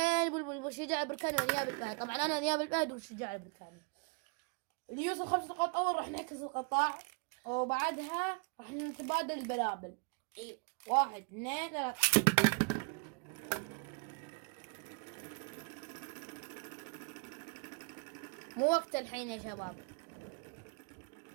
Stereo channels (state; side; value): quieter; left; 35.2 dB